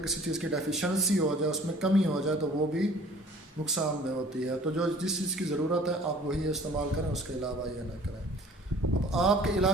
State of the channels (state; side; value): normal; both; correlation 0.51